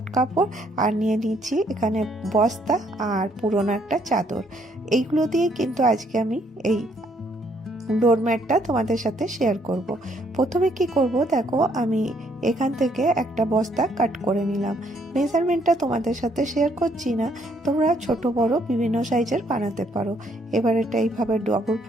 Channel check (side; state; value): both; normal; correlation 0.69